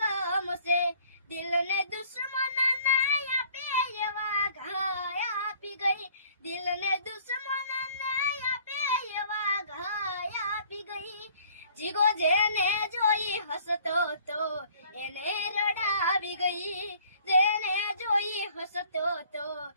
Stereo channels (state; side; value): inverted; both; correlation -0.56